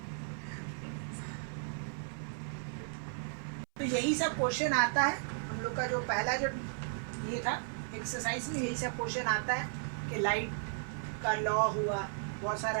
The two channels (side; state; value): left; silent; 54 dB below the other